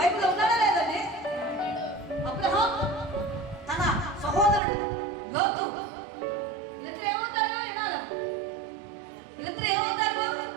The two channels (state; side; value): drops out; left; at 4.6 s